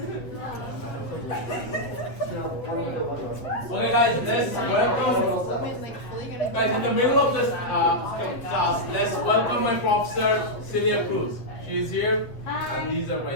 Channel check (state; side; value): late; right; 7.9 ms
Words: Okay guys, let's welcome, guys in the middle of this class, let's welcome my professor, Celia Cruz. She is here, and these are